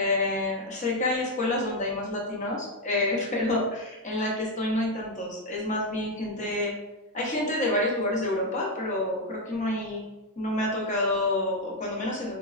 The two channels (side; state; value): both; normal; correlation 0.05